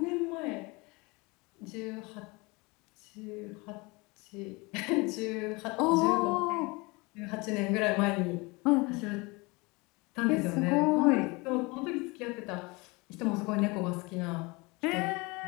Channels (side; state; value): right; quieter; 26.0 dB